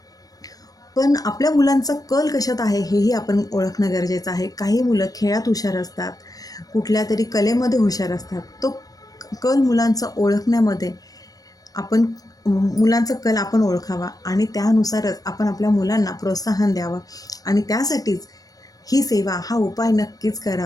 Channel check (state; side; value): late; right; 0.18 ms